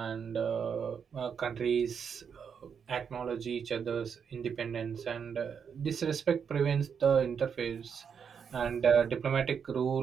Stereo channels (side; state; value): left; quieter; 6.9 dB